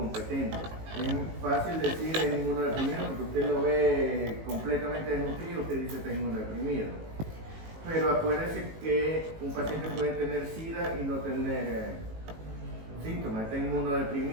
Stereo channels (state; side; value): late; left; 18 ms